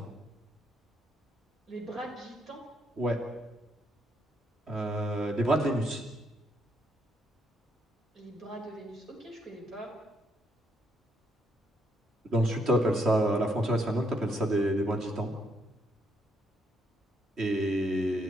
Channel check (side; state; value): both; normal; correlation 0.74